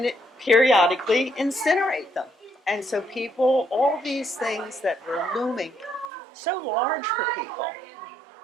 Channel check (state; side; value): drops out; left; at 6.1 s